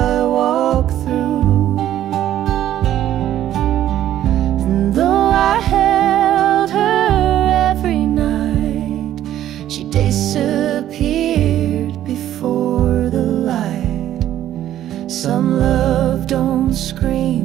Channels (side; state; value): left; quieter; 12.1 dB